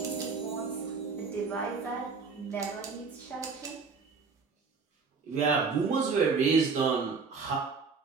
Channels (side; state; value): left; quieter; 5.0 dB